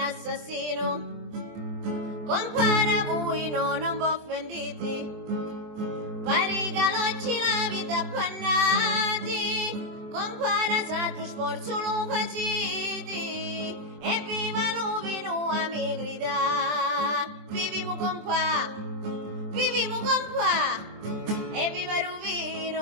Compare voi non vi offendete, pare che oggi la vita appannati, compare saggio sforzo lo faciti, e viva Lovino a mi grida, viviamo con pa, e viva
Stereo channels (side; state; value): left; late; 23 ms